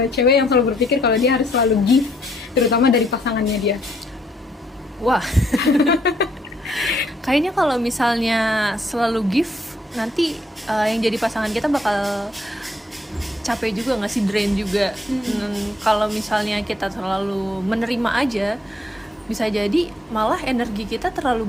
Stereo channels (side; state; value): both; normal; correlation 0.70